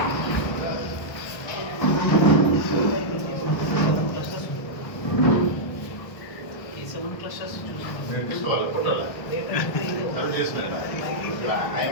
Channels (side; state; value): right; late; 1.3 ms